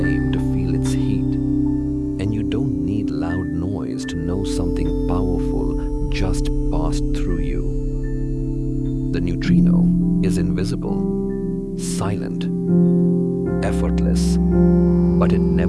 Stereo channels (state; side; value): identical; both; correlation 1.00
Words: to feel its heat. And you don't need loud noise to know something powerful just passed through you. The neutrino is invisible, silent, effortless, but it